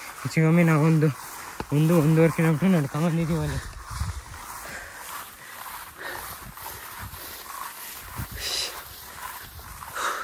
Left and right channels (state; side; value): identical; both; correlation 1.00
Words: ಹೆಚ್ಚಿಗೊಮ್ಮೆ ನಾವು ಒಂದೂವರೆ ಕಿಲೋಮೀಟ್ರ್ ನಡ್ಕೊಂಬಂದಿದ್ದೀವಿ ಅಲ್ಲಿ.